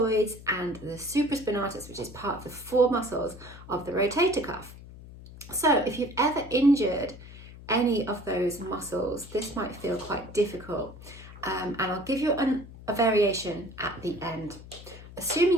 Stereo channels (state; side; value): noise; left; hum, 16 dB below the sound